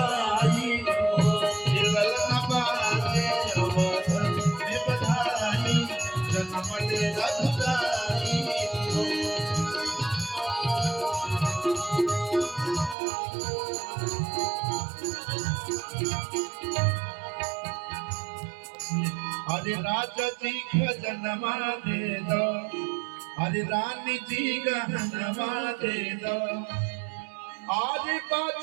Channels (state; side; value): drops out; left; at 13.0 s